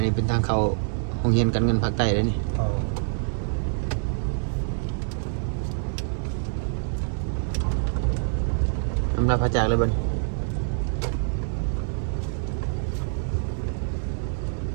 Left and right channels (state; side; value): silent; left; digital silence